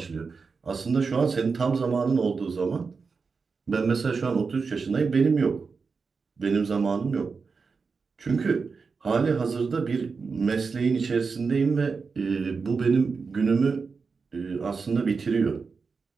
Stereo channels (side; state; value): left; quieter; 4.9 dB